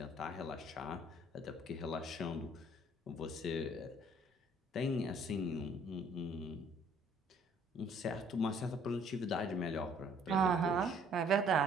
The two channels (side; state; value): both; normal; correlation 0.59